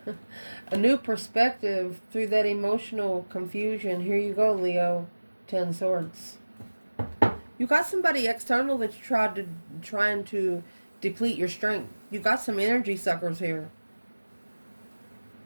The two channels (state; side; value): inverted; both; correlation -1.00